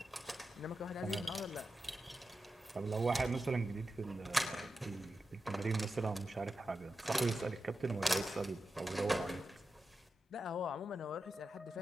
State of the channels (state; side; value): normal; both; correlation 0.91